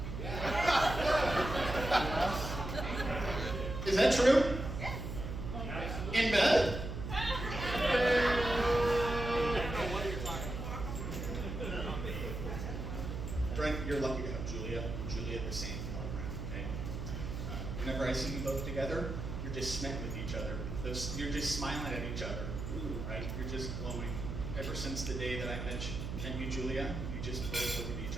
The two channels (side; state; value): right; noise; hum, 5 dB below the sound